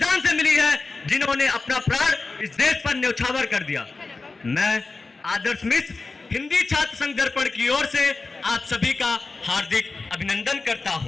से मिली है जिन्होंने अपना प्राण इस देश पर न्यौछावर कर दिया। मैं आदर्श मिश्र हिंदी छात्र संघ दर्पण की ओर से आप सभी का हार्दिक अभिनंदन करता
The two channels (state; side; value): quieter; right; 3.8 dB